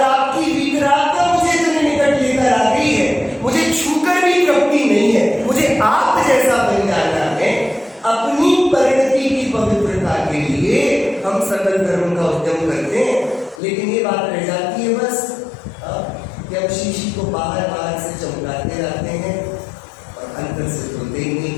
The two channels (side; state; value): right; drops out; at 13.6 s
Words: आपकी वितरागता मुझे इतने निकट लेकर आ गई है, मुझे छूकर भी तृप्ति नहीं है, मुझे आप जैसा बन जाना है। अपनी परिणति की पवित्रता के लिए हम सकल धर्म का उद्यम करते हैं, लेकिन ये बात रह जाती है बस कि हम शीशी को बाहर बाहर से चमकाते रहते हैं और अंदर से धोते ही नहीं।